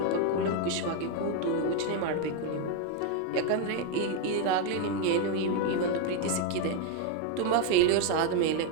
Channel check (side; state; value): both; different; correlation 0.01